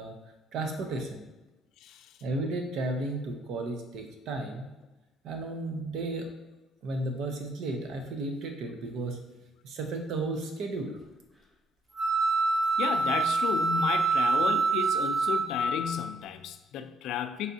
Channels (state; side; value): normal; both; correlation 0.70